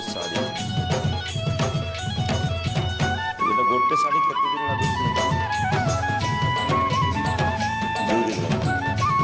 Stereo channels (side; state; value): both; identical; correlation 1.00